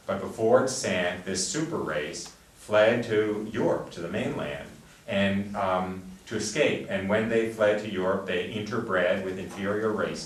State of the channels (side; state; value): both; identical; correlation 1.00